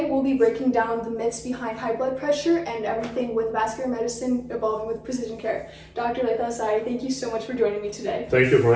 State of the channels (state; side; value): identical; both; correlation 1.00